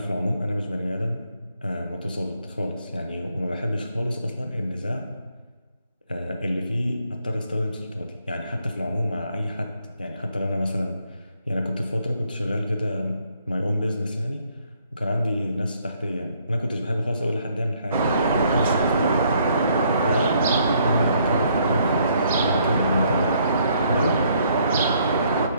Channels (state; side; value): inverted; both; correlation -0.69